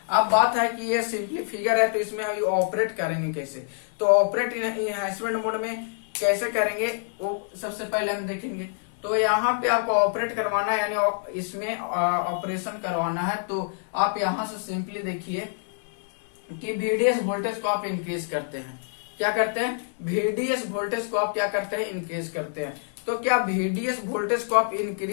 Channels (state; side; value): silent; right; 61 dB below the other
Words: अब बात है कि ये सिंपली फिगर है तो इसमें हम ऑपरेट करेंगे कैसे, तो ऑपरेट इनहेंसमेंट मोड में कैसे करेंगे वो सबसे पहले हम देखेंगे। तो यहाँ पे आपको ऑपरेट करवाना है, यानी इसमें ऑपरेशन करवाना है, तो आप यहाँ से सिंपली देखिए कि VDS वोल्टेज को आप इंक्रीज करते हैं। क्या करते हैं, VDS वोल्टेज को आप क्या करते हैं, इंक्रीज करते हैं। तो क्या VDS वोल्टेज को आप